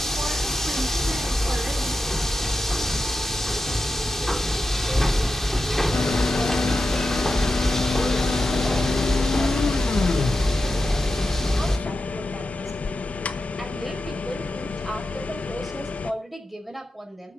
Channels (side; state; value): both; normal; correlation 0.90